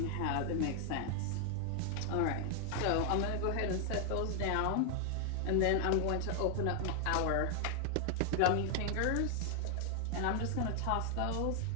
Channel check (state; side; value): different; both; correlation 0.00